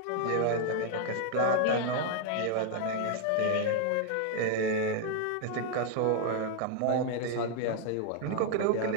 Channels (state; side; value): different; both; correlation 0.00